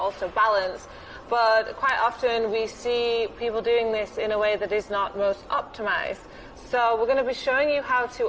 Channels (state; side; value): identical; both; correlation 1.00